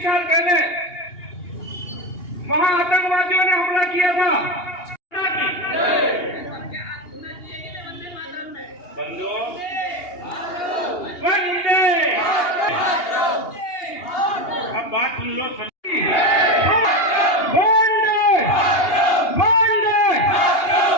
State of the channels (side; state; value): right; late; 2.8 ms